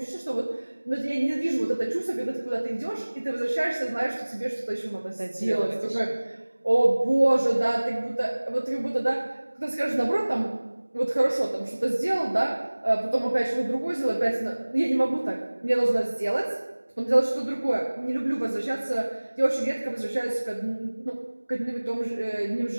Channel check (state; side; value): inverted; both; correlation -1.00